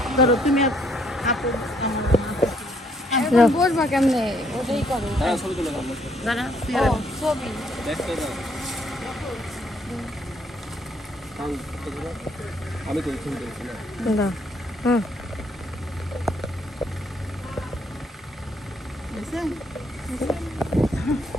ধরো তুমি বসবা কেমনে, ওটাই করো।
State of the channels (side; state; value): both; normal; correlation 0.68